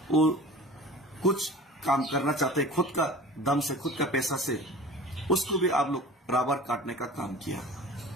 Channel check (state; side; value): normal; both; correlation 0.40